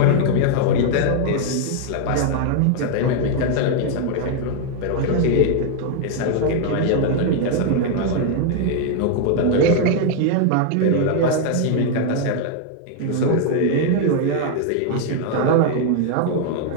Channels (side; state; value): both; different; correlation 0.00